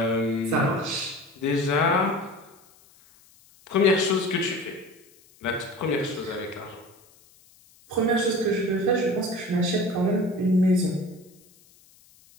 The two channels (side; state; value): left; noise; hiss, 28 dB below the sound